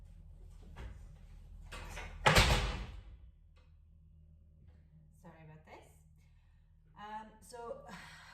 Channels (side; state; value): both; identical; correlation 1.00